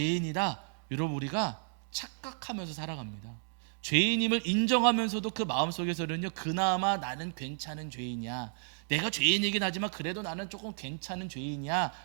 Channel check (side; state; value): left; silent; digital silence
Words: 여러분, 우리가 착각하면서 살아갑니다. 죄인임을 인정하면서도 그 마음속에서는요, 그나마 나는 괜찮은 죄인이야, 내가 죄인이긴 하지만 그래도 나는 조금 괜찮은 죄인이야